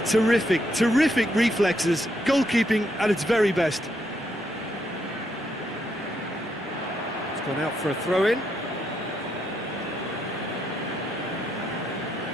terrific, terrific reflexes, goalkeeping at its very best. It's gone out for a throw-in.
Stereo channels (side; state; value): both; normal; correlation 0.78